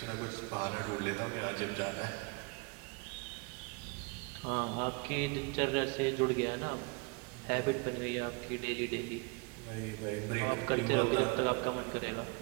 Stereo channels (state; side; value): quieter; left; 29.2 dB